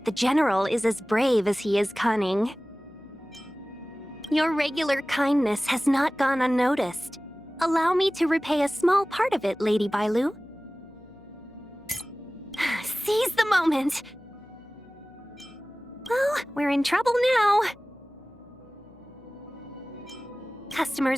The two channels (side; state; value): left; noise; hum, 26 dB below the sound